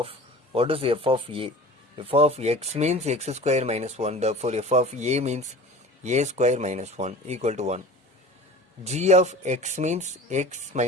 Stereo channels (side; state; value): both; normal; correlation 0.39